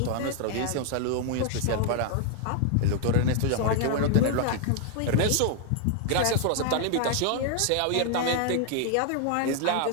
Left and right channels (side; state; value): both; different; correlation 0.00